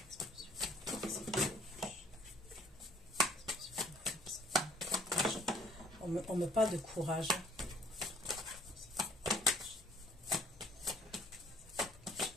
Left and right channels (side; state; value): both; normal; correlation 0.59